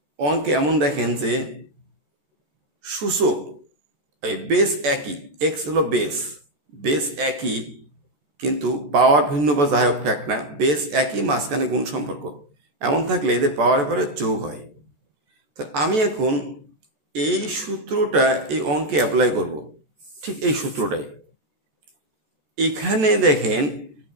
অঙ্কে এমন দেখেন যে সূচক এই বেস একই, এক্স হলো বেস একই কিন্তু পাওয়ার ভিন্ন বা যাই হোক ফ্যাক্ট না, বেস একই মাঝখানে গুণ সম্পর্ক, এমন থাকলে এদের পাওয়ারের পরে যোগ হয়। তাহলে আমি এখন এই সূত্রটা এই অঙ্কে অ্যাপ্লাই করব, ঠিক এই সূত্রটাই। এখানে দেখেন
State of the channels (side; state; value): left; late; 14 ms